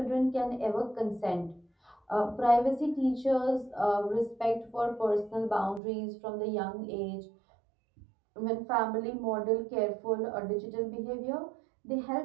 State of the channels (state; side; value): drops out; left; at 5.8 s